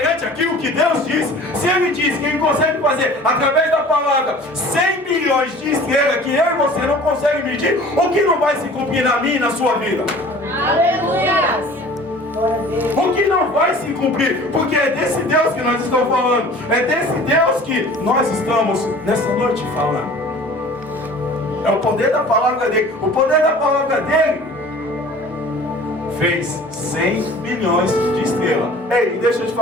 aquilo que Deus disse? Se Ele diz que Ele consegue fazer através da palavra 100 milhões de estrelas que eu e você não consegue medir, o que não vai se cumprir na minha e na sua vida? Aleluia. O que não vai se cumprir? Porque é desse Deus que nós estamos falando. É desse Deus que nós estamos nessa noite falando. É o poder da palavra dele. O poder da palavra dele fez 100 milhões de estrelas. Ei, deixa eu te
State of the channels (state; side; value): normal; both; correlation 0.45